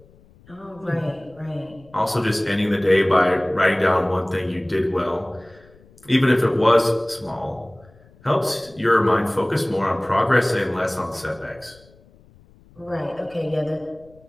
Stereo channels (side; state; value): left; noise; rumble, 27 dB below the sound